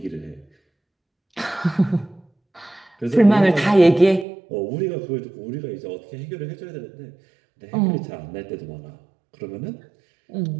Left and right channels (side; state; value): left; drops out; at 4.2 s